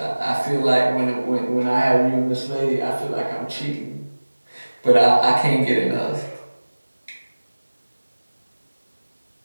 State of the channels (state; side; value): inverted; both; correlation -1.00